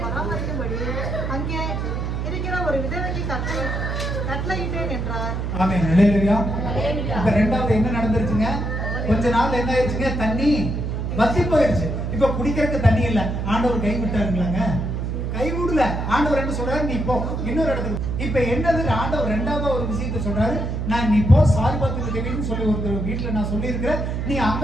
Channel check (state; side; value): noise; right; hum, 2 dB below the sound